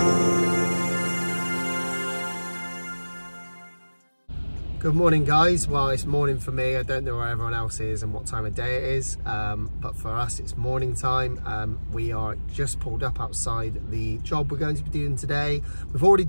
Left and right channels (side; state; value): both; inverted; correlation -1.00